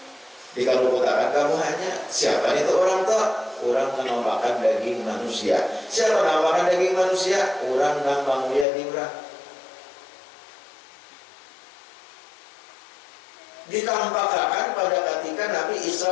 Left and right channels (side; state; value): right; drops out; at 8.7 s